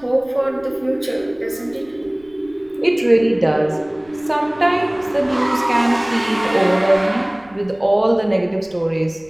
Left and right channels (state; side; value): noise; right; rumble, 28 dB below the sound